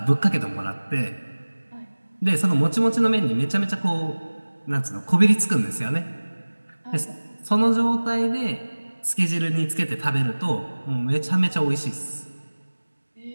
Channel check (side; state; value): both; inverted; correlation -1.00